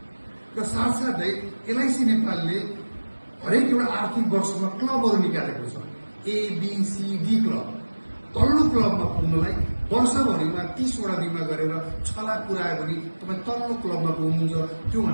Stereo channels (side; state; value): both; inverted; correlation -1.00